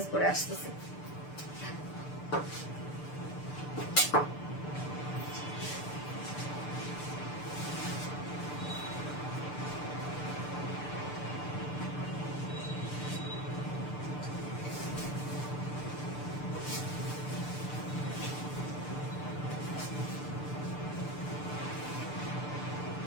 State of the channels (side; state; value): right; late; 6.8 ms